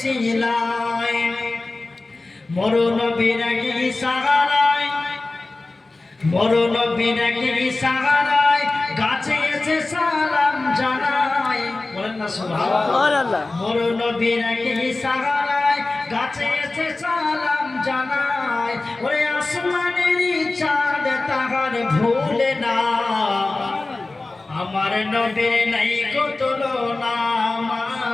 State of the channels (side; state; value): right; quieter; 3.2 dB